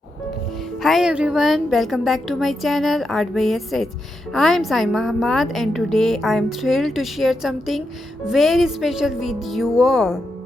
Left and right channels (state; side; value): normal; both; correlation 0.85